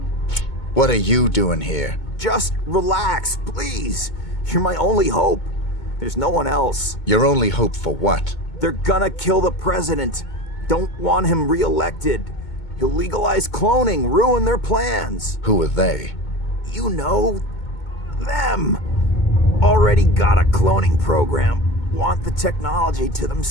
What are you doing here? Just relax, please. You're my only hope. There's no one else. Your only hope for what? They're gonna kill the president. Don't want him re-elected. He'll legalize cloning, ruin their plans. Who are they? You know, them. Already got a cloning program. Want the technology to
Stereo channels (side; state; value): right; late; 2.2 ms